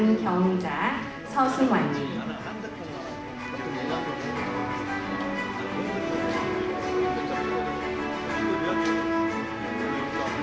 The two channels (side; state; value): both; identical; correlation 1.00